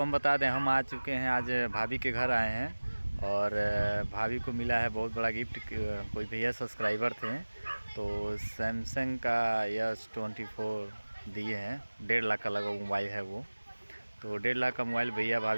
हम बता दें, हम आ चुके हैं, आज भाभी के घर आए हैं और भाभी को मिला है बहुत बड़ा गिफ्ट। कोई भैया सब्सक्राइबर थे तो सैमसंग का S24 दिए हैं। 1.5 लाख का लगा मोबाइल है वो, तो 1.5 लाख का मोबाइल भैया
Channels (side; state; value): both; inverted; correlation -1.00